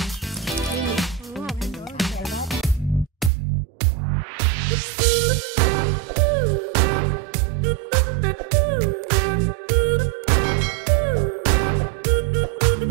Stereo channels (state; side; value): drops out; left; at 3.3 s